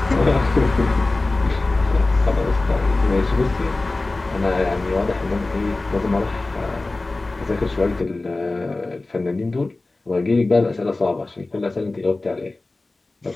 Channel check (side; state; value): right; quieter; 3.1 dB